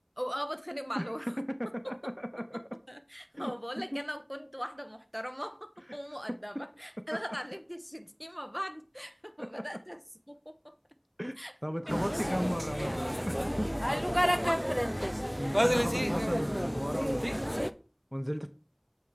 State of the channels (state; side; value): identical; both; correlation 1.00